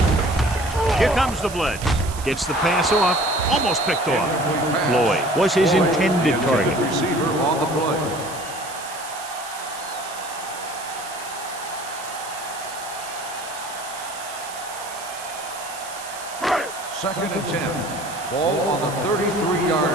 boys. Here comes the blitz. Gets the pass off. Almost picked off. Floyd was his intended target. Receiver on the play. Second and 10. Ball on the 33-yard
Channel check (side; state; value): right; noise; hiss, 13 dB below the sound